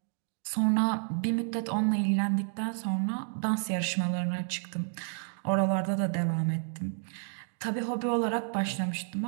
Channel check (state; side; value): silent; left; digital silence